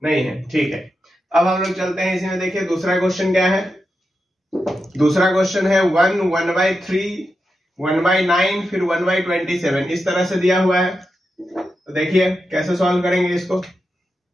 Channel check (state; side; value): normal; both; correlation 0.88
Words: नहीं है, ठीक है। अब हम लोग चलते हैं इसी में। देखिए दूसरा क्वेश्चन क्या है, दूसरा क्वेश्चन है 1 1 बाई 3 1 बाई 9 फिर 1 बाई 27 इस तरह से दिया हुआ है। तो देखिए कैसे सॉल्व करेंगे इसको।